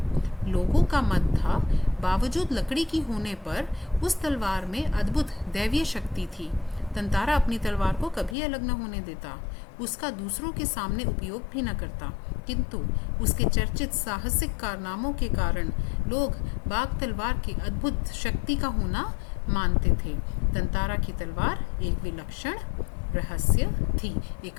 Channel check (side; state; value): right; drops out; at 8.3 s